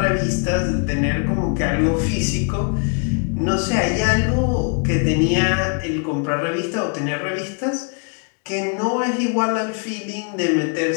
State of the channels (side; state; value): right; quieter; 39.8 dB